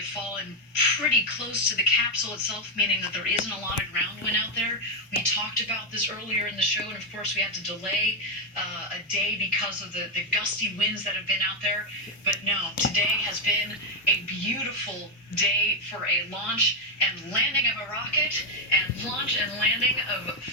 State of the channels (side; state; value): both; normal; correlation 0.02